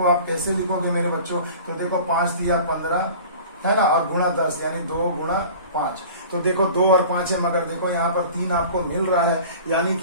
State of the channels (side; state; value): both; inverted; correlation -0.41